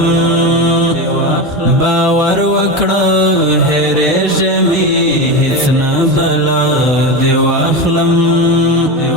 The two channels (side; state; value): both; normal; correlation 0.19